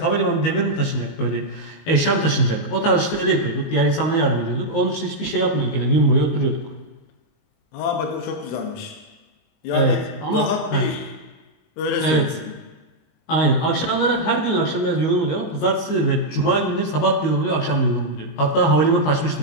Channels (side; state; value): right; late; 19 ms